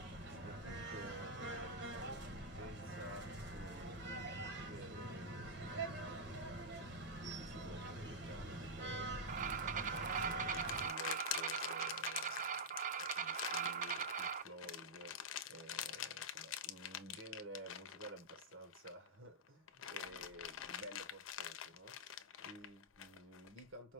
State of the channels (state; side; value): normal; both; correlation -0.06